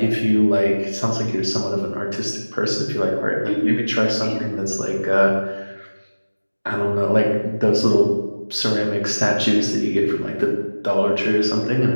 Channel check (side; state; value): both; inverted; correlation -1.00